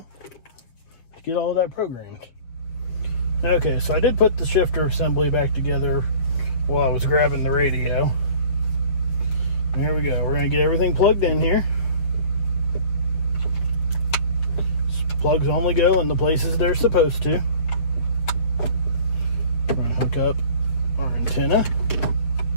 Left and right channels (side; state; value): right; late; 7.2 ms